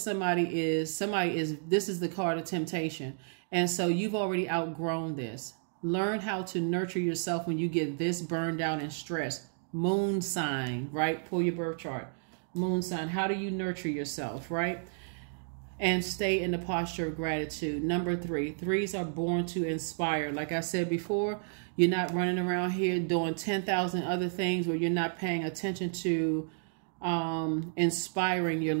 is. This is the card of temptation. And so you've already outgrown this. Learn how to nurture yourself when you get this burned out and stressed. Moon sign, right? Pull your birth chart. Moon sign. How do you nurture yourself, right? And stay in the posture of gratitude. Number 3, 3s are born to inspire. Like I said before, you're not running around here doing 10,000 other things where you're not paying attention to inspiring your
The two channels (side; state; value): left; silent; digital silence